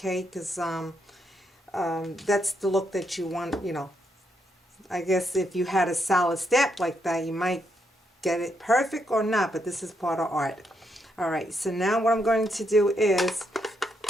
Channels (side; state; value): both; normal; correlation 0.78